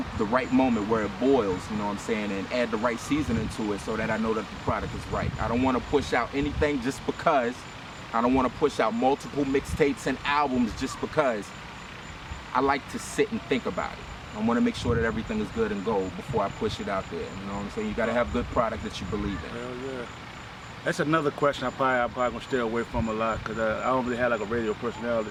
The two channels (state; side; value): identical; both; correlation 1.00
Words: moment where it boils, you know what I'm saying, and add the right seasoning to it so that I know that the product is right. I don't want to push out anything just because. I don't want to push out multiple mixtapes and albums just because. I like to sit and think about it. I want to make sure that everything is good and gold before I push it out there. You know what I'm saying? You got to have good product that you believe in. Hell yeah. That's another question I'm probably going to stay away from a lot because I don't really have like a radio personality.